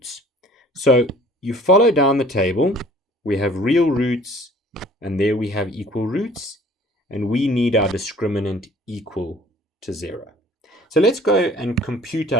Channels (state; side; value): normal; both; correlation 0.52